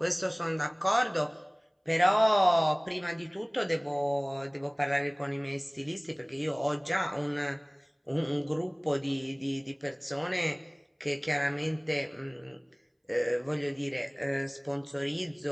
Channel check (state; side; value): identical; both; correlation 1.00